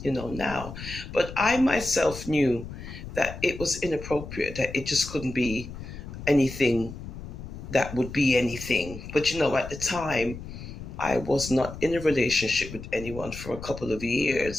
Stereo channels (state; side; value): noise; left; rumble, 11 dB below the sound